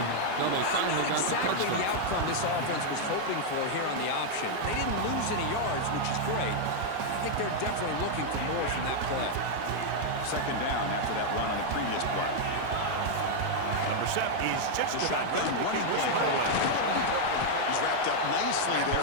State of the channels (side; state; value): both; different; correlation 0.00